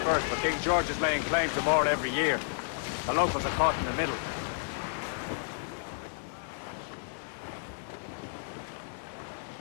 but King George is laying claim to more every year. The locals are caught in the middle.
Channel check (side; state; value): right; silent; digital silence